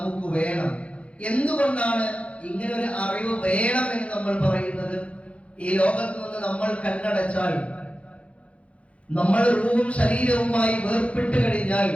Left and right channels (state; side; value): late; right; 0.062 ms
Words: വേണം. എന്തുകൊണ്ടാണ് ഇങ്ങനെ ഒരു അറിവ് വേണം എന്ന് നമ്മൾ പറയുന്നത്? ഈ ലോകത്ത് നിന്ന് നമ്മൾ കണ്ണടച്ചാൽ, നമ്മൾ റൂഹും ശരീരവുമായി വേർപെട്ട് കഴിഞ്ഞാൽ